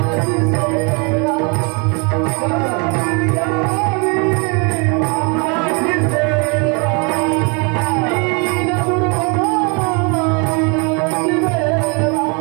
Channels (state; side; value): quieter; left; 32.2 dB